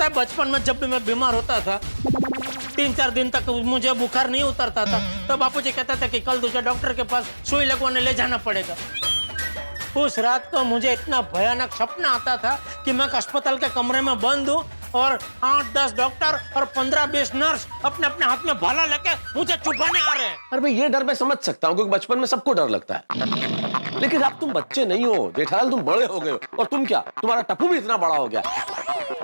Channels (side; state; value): both; inverted; correlation -1.00